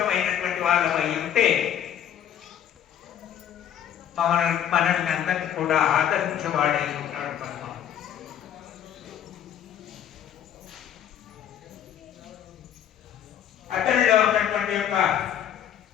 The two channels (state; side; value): quieter; right; 9.9 dB